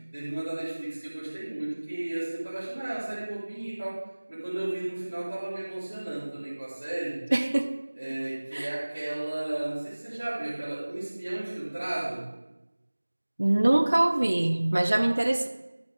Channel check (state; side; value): inverted; both; correlation -1.00